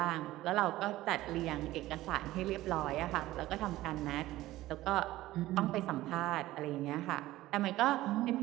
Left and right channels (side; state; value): left; quieter; 16.3 dB